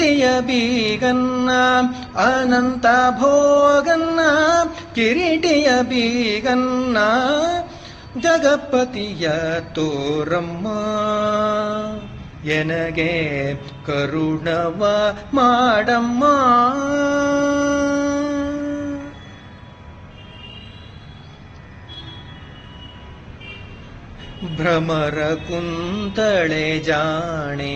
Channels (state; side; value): identical; both; correlation 1.00